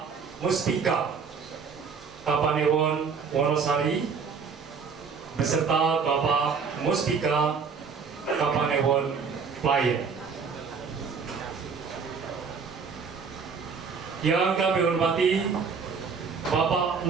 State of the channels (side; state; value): left; quieter; 5.6 dB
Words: Muspika Kapanewon Wonosari beserta Bapak Muspika Kapanewon Playen, yang kami hormati Bapak